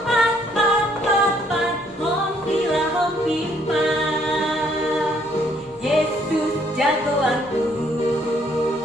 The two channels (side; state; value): both; normal; correlation 0.67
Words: hompilah hompimpa, jagoanku,